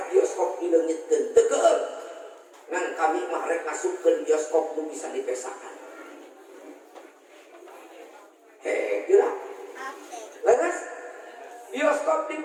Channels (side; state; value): both; identical; correlation 1.00